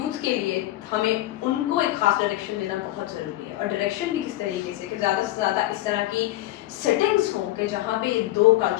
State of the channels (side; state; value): right; quieter; 15.8 dB